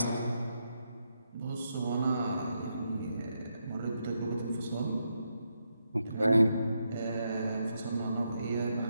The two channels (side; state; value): both; inverted; correlation -0.82